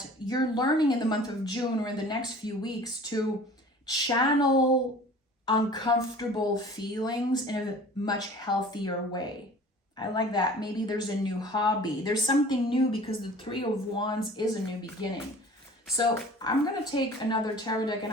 you're learning in the month of June or in the next few weeks to channel uncomfortable feelings in a much healthier way. I like that. Maybe there's a new hobby. There's something new because the 3 of Wands is a new beginning. So I'm going to take another tarot deck and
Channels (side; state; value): both; normal; correlation 0.45